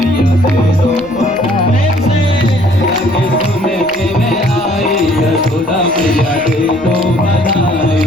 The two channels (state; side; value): noise; right; rumble, 24 dB below the sound